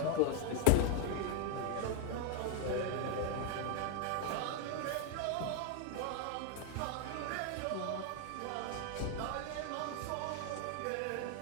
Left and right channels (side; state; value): both; different; correlation 0.00